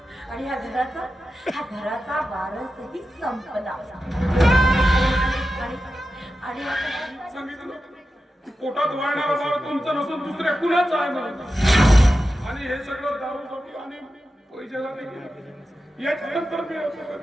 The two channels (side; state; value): both; normal; correlation 0.92